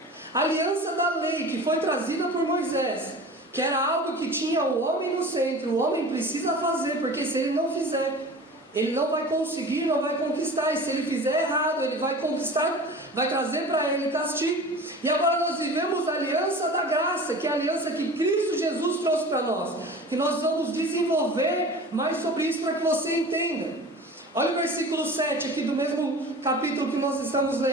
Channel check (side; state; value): both; normal; correlation 0.38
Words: A aliança da lei, que foi trazida por Moisés, que era algo que tinha o homem no centro. O homem precisa fazer, porque se ele não fizer, ele não vai conseguir, não vai conquistar. E se ele fizer errado, ele vai conquistar, vai trazer para ele castigo. E agora nós vivemos a aliança da graça, que é a aliança que Cristo Jesus trouxe para nós, que nós vamos desenvolver mais sobre isso para que você entenda. Olha o versículo 7 aqui do mesmo capítulo que nós estamos